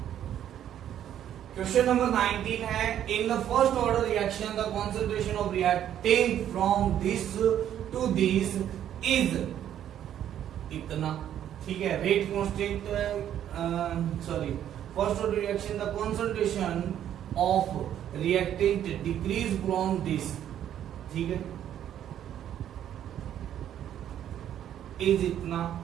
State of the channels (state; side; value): quieter; left; 10.6 dB